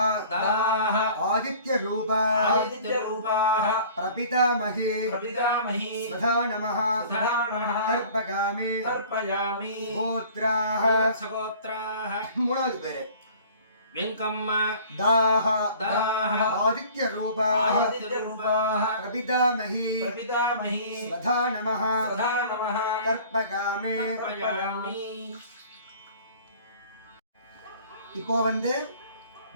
दाः आदित्यरूपाः आदित्यरूपाः प्रपितामहे पितामही स्वधा नमः स्वधा नमः तर्पयामि तर्पयामि गोत्राः ஸ்ரீவத்சகோத்ராஹ மூணாவது பேரு வெங்கம்மா दाह दाः आदित्यरूपाः आदित्यरूपाः प्रपितामहे पितामही स्वधा नमः स्वधा नमः तर्पयामि तर्पयामि இப்போ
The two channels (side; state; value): both; inverted; correlation -0.48